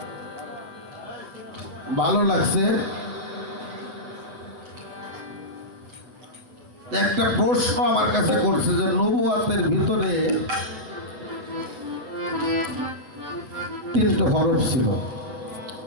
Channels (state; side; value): late; left; 8.0 ms